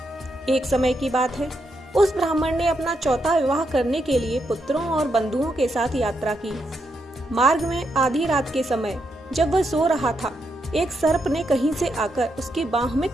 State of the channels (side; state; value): both; normal; correlation 0.81